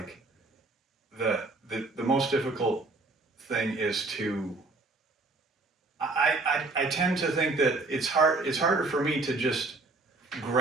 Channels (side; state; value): left; quieter; 3.3 dB